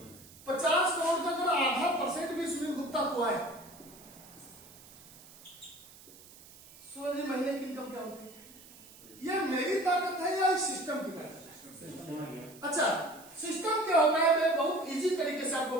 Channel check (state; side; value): noise; right; hiss, 21 dB below the sound